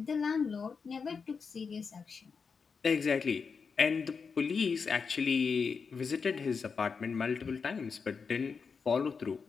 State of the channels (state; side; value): quieter; right; 5.5 dB